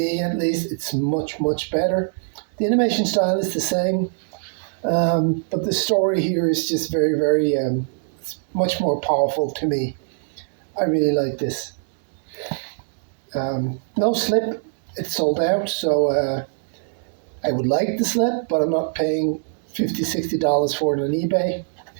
at least, it's much, much better. The animation style is the same, but the story here is just very, very, it's much more powerful to me. I really like this. No slip, it's sold out, so I would like the slip, but I'm not paying $50, $60 for it on eBay.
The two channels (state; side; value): silent; left; digital silence